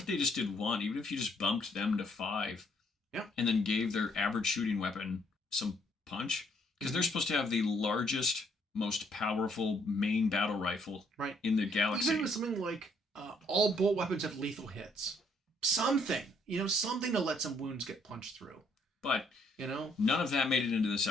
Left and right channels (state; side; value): normal; both; correlation 0.68